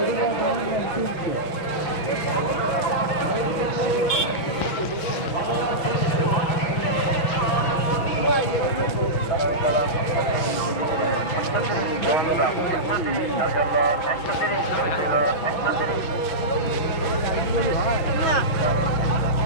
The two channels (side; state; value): right; late; 6.1 ms